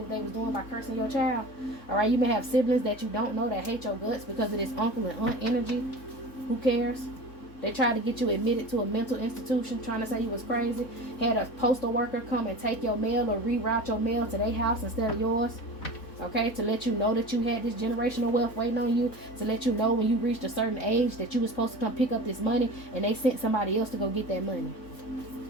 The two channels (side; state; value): right; late; 3.7 ms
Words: what they was doing by cursing your child? Alright, you may have siblings that you don't know that hate your guts because of this uncle and aunt energy. Who cares? They tried to get you admitted to a mental institution, trying to say you was crazy. Had a postal worker come and take your mail or reroute your mail to their house instead of yours. Okay, to let you know that you had this generational wealth waiting on you, to let you know when you reached a certain age that you were supposed to come pick up this money, and they sent somebody else to go get that money.